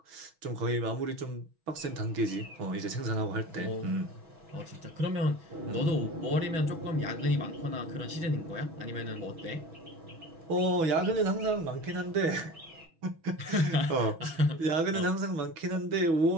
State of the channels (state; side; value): late; left; 6.2 ms